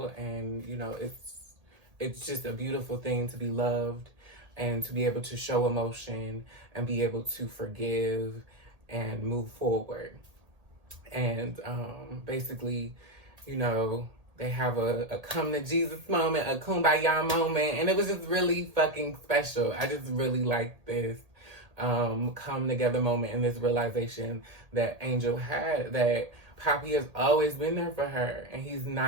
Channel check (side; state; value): left; late; 1.8 ms